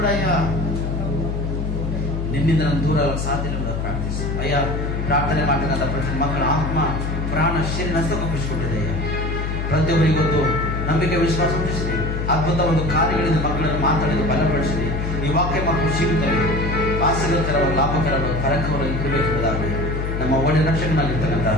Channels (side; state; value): left; noise; hum, 2 dB below the sound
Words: ಅಯ್ಯ ನಿನ್ನಿಂದ ನಾನು ದೂರ ಸಾಧ್ಯ ಪ್ರಾರ್ಥಿಸು. ಅಯ್ಯ ಪ್ರಾರ್ಥನೆ ಮಾಡತಕ್ಕಂಥ ಪ್ರತಿ ಮಕ್ಕಳ ಆತ್ಮ ಪ್ರಾಣ ಶರೀರ ನಷ್ಟಪಡಿಸಿಕೊಂಡಿದೆ. ಪ್ರತಿಯೊಬ್ಬರಿಗೆ ಗೊತ್ತು ನಂಬಿಕೆ ವಿಶ್ವಾಸ ಹುಟ್ಟಿಸಿದೆ. ಅದ್ಭುತ ಒಂದು ಕಾರ್ಯಗಳಿಂದ ಮಕ್ಕಳನ್ನು ಮಾತಾಡಿದ ಬಲಪಡಿಸಿದೆ. ಈ ವಾಕ್ಯ ಮಕ್ಕಳು ಜೀವಿತವೆ ಆಸಕ್ತಿಕರವಾದ ಲಾಭಕರವಾದ ಕರಕವಾಗಿ ಇರಬೇಕೆಂಬುದಾಗಿ ನಮ್ಮ ಒಳ್ಳೆಯ ರಕ್ಷಕನಾಗಿರ್ತಕ್ಕಂಥ